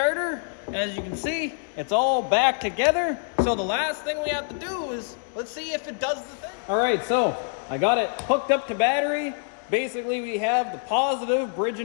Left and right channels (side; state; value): right; silent; 61 dB below the other